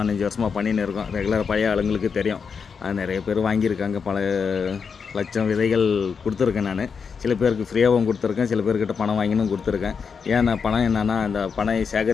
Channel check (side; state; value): right; quieter; 6.0 dB